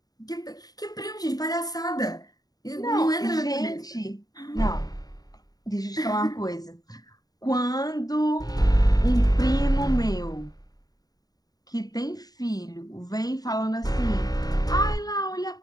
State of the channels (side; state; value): right; late; 0.18 ms